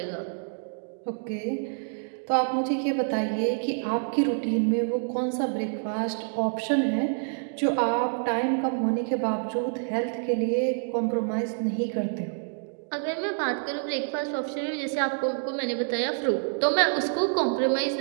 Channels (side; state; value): left; silent; digital silence